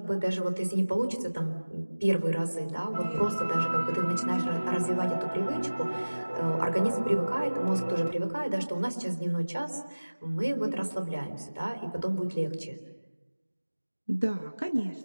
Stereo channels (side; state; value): both; inverted; correlation -1.00